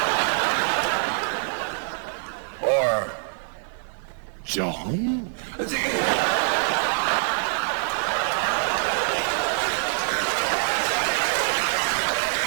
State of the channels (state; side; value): silent; left; 62 dB below the other